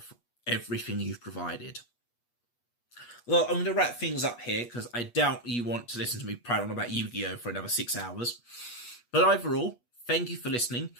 everything you've provided. Well, I'm going to wrap things up here because I doubt you want to listen to me prattle on about Yu-Gi-Oh! For another 6 hours. But overall, thank you for listening.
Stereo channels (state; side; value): late; right; 8.3 ms